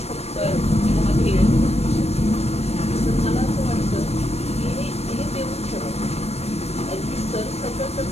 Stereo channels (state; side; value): late; right; 0.31 ms